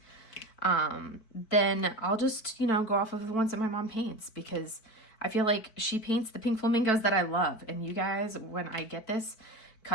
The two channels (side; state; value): right; late; 4.5 ms